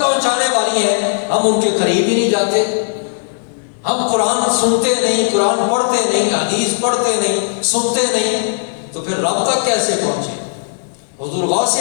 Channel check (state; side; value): silent; right; digital silence